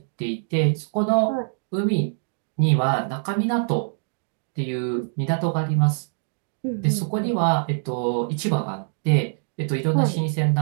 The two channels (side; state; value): left; silent; digital silence